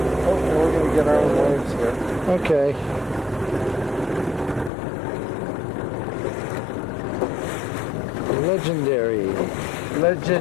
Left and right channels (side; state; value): right; drops out; at 4.7 s